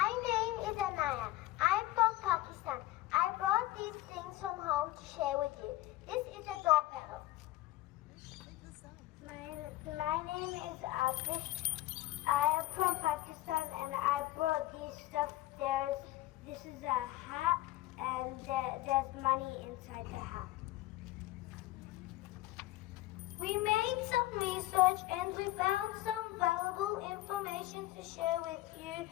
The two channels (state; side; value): quieter; right; 16.8 dB